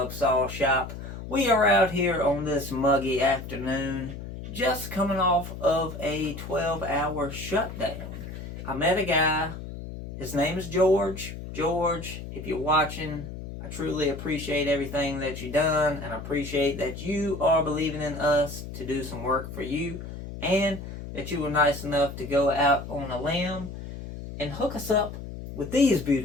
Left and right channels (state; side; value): noise; left; hum, 10 dB below the sound